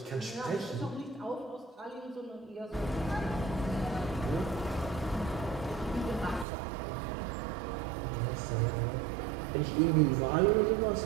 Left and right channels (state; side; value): drops out; left; at 6.5 s